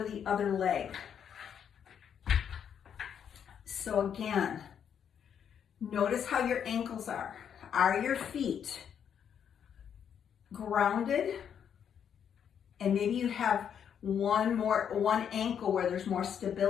the other leg. So again, notice how your ankles are. Are your feet grounded? And maybe you have one ankle where there's more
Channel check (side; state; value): right; quieter; 8.2 dB